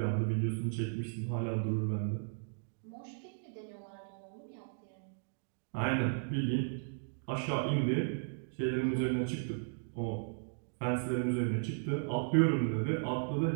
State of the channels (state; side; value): silent; left; digital silence